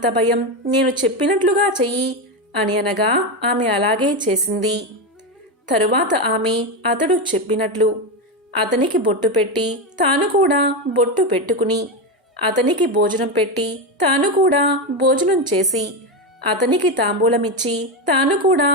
భయం, నేను చెప్పినట్లుగా చెయ్యి అని అనగా ఆమె అలాగే చేసింది. తరువాత ఆమె అతడు చెప్పినట్లు అతనికి బొట్టు పెట్టి తాను కూడా బొట్టు పెట్టుకుని అతనికి భోజనం పెట్టి తాను కూడా భోజనం చేసి అతనికి తాంబూలమిచ్చి తాను కూడా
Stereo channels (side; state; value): both; normal; correlation 0.12